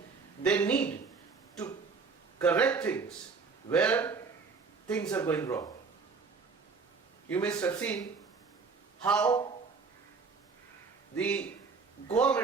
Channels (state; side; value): quieter; left; 4.8 dB